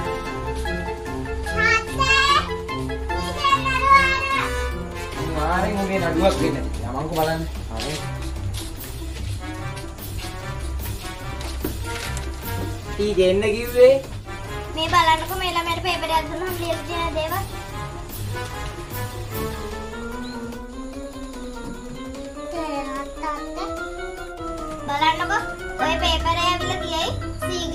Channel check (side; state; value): both; identical; correlation 1.00